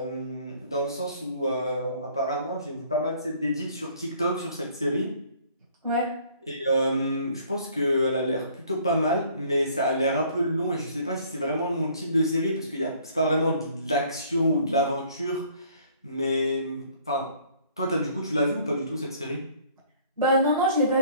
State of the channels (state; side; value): inverted; both; correlation -0.57